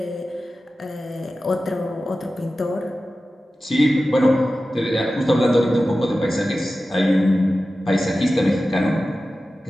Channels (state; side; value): normal; both; correlation 0.94